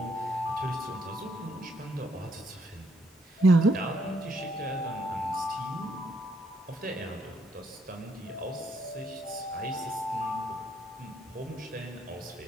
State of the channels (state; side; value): normal; both; correlation 0.72